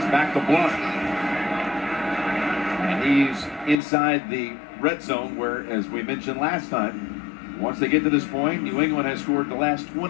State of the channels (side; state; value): right; drops out; at 3.8 s